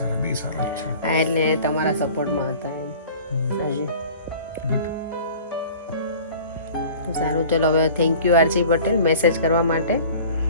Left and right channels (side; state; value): both; inverted; correlation -0.44